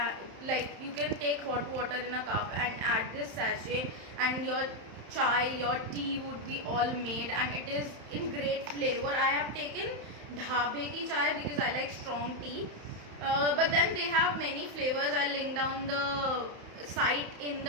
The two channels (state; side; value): late; left; 31 ms